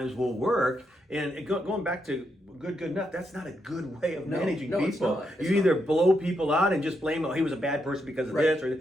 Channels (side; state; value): both; normal; correlation 0.81